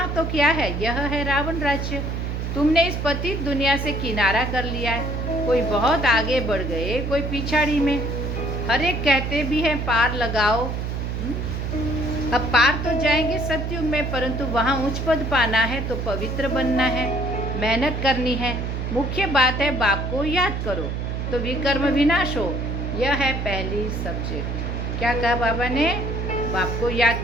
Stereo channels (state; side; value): noise; right; hum, 3 dB below the sound